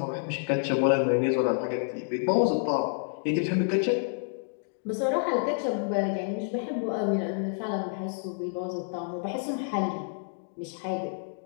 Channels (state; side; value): silent; right; digital silence